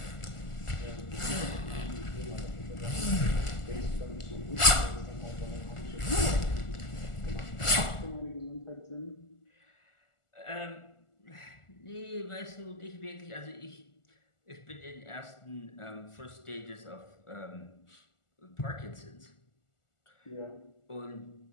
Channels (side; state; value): right; late; 1.4 ms